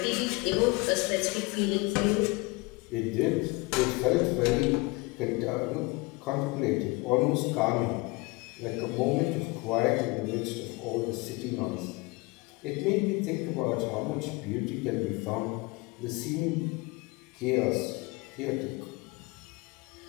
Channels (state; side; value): quieter; right; 25.2 dB